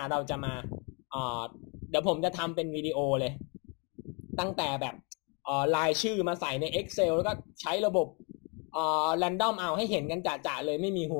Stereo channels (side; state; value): right; quieter; 33.7 dB